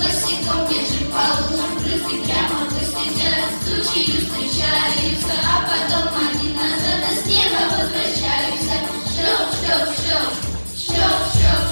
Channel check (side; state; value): both; inverted; correlation -1.00